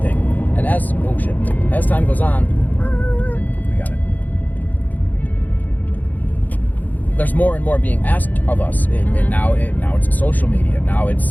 And as time goes on, we got it. There's more and more being asked of us. And now it's social media. Now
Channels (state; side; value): late; right; 0.082 ms